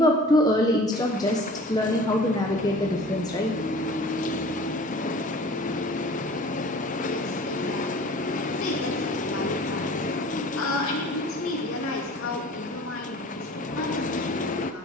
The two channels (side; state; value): both; normal; correlation 0.45